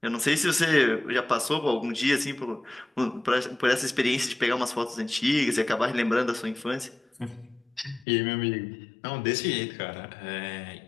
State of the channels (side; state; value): right; drops out; at 8.1 s